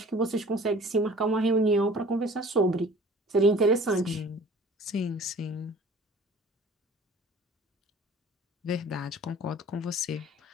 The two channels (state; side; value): normal; both; correlation 0.47